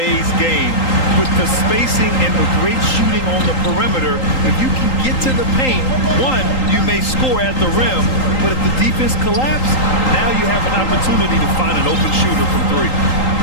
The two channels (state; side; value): late; right; 3.8 ms